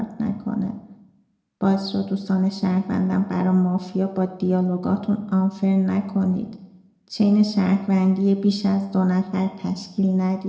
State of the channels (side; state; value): both; identical; correlation 1.00